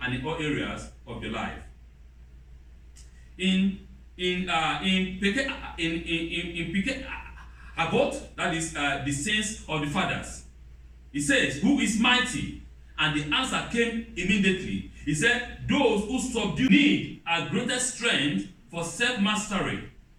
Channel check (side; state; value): both; identical; correlation 1.00